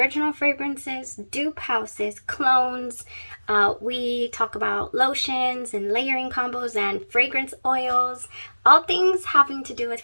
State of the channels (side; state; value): both; inverted; correlation -1.00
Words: fragrances, dupe houses, clones. We talk about lotions and layering combos and fragrance oils. All things having to do with